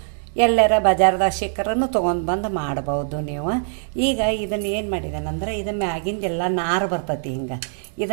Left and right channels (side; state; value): left; silent; digital silence